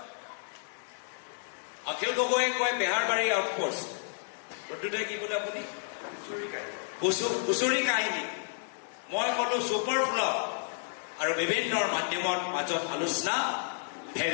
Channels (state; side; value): silent; right; digital silence